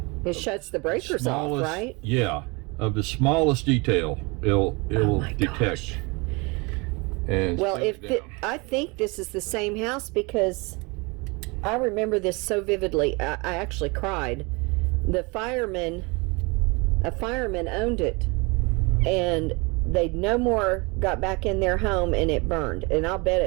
It shuts the breakers off, right? Yeah, of the smallest detail, it'll my detect. gosh. And Well, shut it down. I think this is the same house because I remember this so vividly. I actually cried. A fireman owned it, and they no more got back in their home, and it burned. And I'll bet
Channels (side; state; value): left; quieter; 27.9 dB